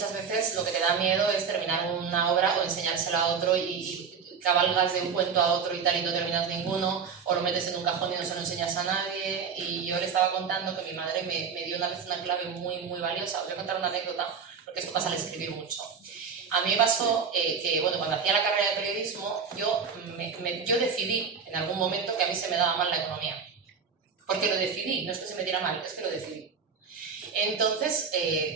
veces lo que te da miedo es terminar una obra o enseñársela a otro y cabalgas de un cuento a otro y tal y no terminas ninguno, o lo metes en un cajón y no se lo enseñas a nadie. Y yo le estaba contando que mi madre me dio una vez una clave muy, muy valiosa. Os voy a contar una anécdota, porque esto pasa al escribir mucho. A mí me pasó que, bueno, cuando hacía la carrera de periodismo, yo decidí en algún momento que a mí se me daba mal la economía. Porque lo decidí, no es que se me diera mal, es que lo decidí. Entonces,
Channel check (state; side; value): quieter; left; 6.1 dB